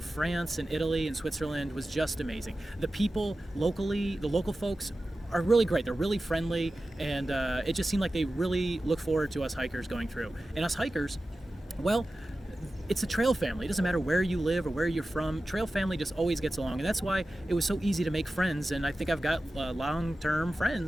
and Italy and Switzerland was just amazing. The people locally, the local folks are really great. They're really friendly, and it just seemed like they really look forward to us hikers going through. And us hikers, well, it's a trail family. It doesn't matter where you live or where you're from. Trail family just always gets along, and that's why it was so easy to make friends. And I think I've got long-term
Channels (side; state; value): both; normal; correlation 0.94